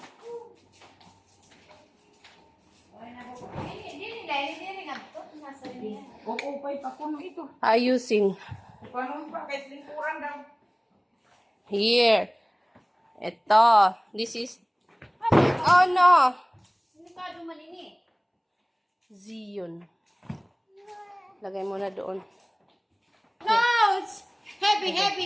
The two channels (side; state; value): both; identical; correlation 1.00